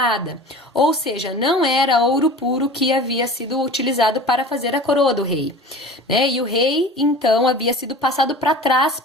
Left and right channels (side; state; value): both; normal; correlation 0.38